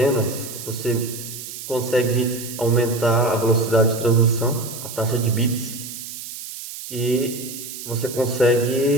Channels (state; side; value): noise; right; hiss, 10 dB below the sound